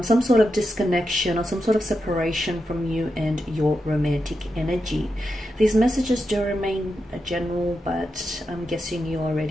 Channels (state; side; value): normal; both; correlation 0.87